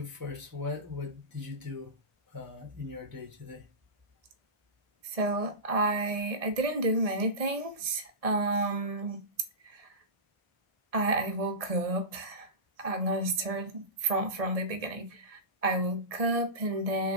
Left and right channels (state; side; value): late; left; 1.6 ms